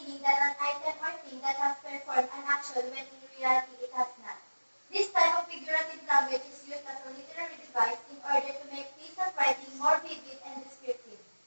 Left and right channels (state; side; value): inverted; both; correlation -1.00